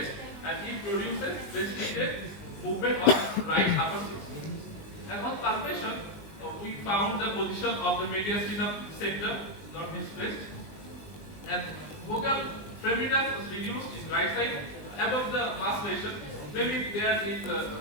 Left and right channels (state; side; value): late; right; 19 ms